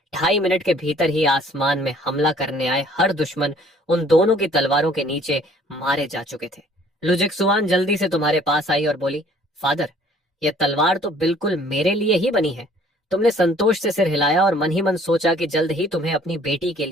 2.5 मिनट के भीतर ही आसमान में हमला करने आए हर दुश्मन उन दोनों की तलवारों के नीचे मारे जा चुके थे। लू जिक्सुआन जल्दी से तुम्हारे पास आई और बोली, फादर, यह तलवार तो बिल्कुल मेरे लिए ही बनी है। तुमने संतोष से सिर हिलाया और मन ही मन सोचा कि जल्द ही तुम्हें अपनी बेटी के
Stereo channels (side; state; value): both; normal; correlation 0.56